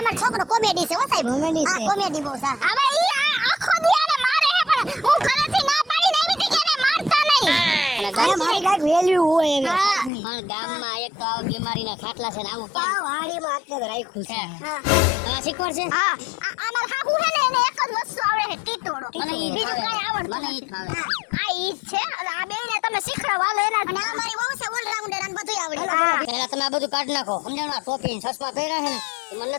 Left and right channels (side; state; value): right; drops out; at 10.1 s